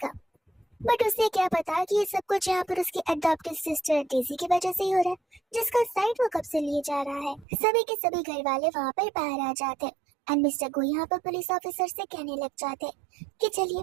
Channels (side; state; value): left; drops out; at 7.5 s